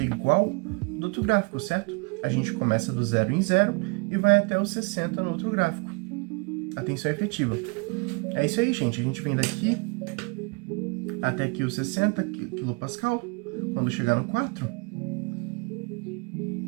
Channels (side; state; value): left; quieter; 30.6 dB